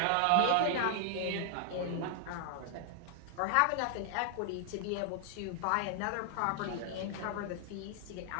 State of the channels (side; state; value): both; different; correlation 0.00